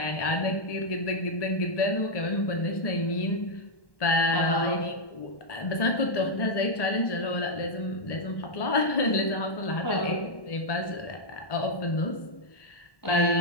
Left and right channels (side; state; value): right; late; 1.1 ms